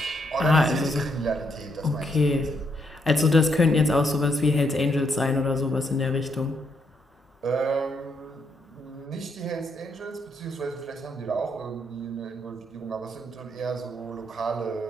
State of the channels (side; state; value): both; normal; correlation 0.76